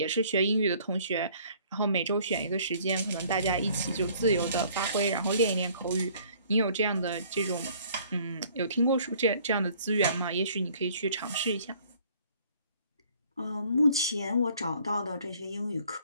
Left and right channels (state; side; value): inverted; both; correlation -0.57